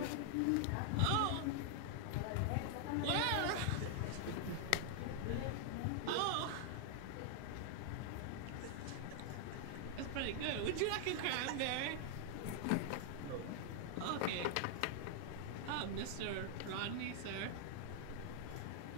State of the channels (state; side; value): different; both; correlation 0.00